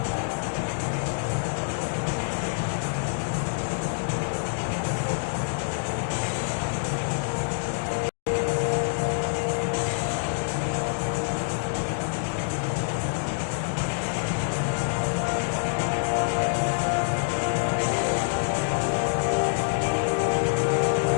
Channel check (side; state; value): right; silent; digital silence